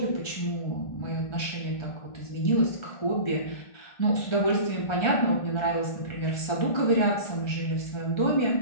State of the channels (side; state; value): right; late; 1.3 ms